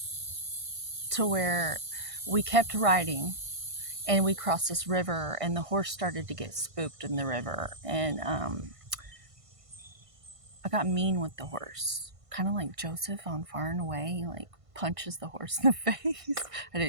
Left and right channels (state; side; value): late; left; 1.5 ms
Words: to where we kept riding, and we crossed this river, and the horse started to get spooked in the river. And I got mean with the horse, kind of like Joseph on Far and Away, like punches the horse in the face. I